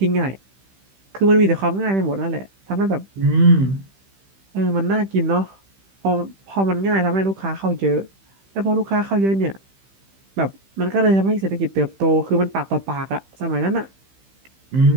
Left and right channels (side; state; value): left; late; 15 ms